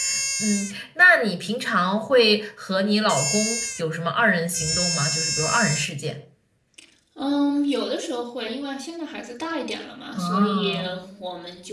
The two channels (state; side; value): identical; both; correlation 1.00